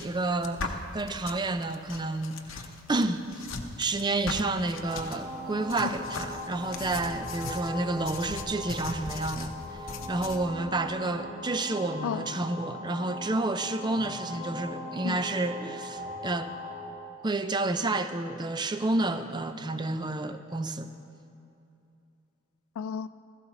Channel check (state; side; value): normal; both; correlation 0.47